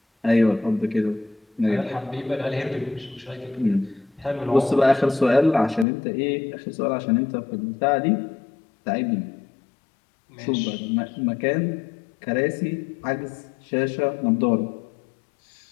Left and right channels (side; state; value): right; drops out; at 5.9 s